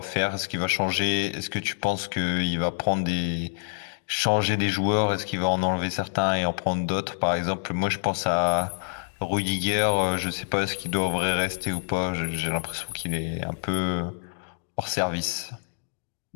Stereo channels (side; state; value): right; silent; digital silence